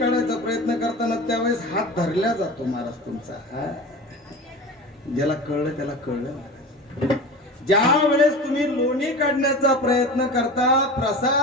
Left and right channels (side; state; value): both; normal; correlation 0.33